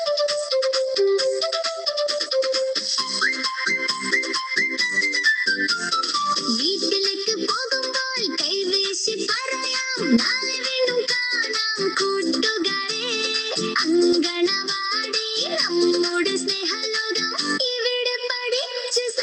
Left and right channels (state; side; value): identical; both; correlation 1.00